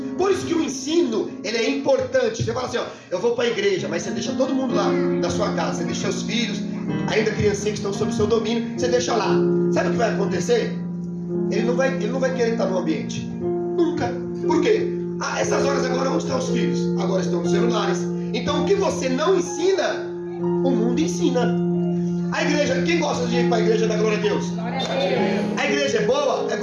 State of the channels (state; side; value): identical; both; correlation 1.00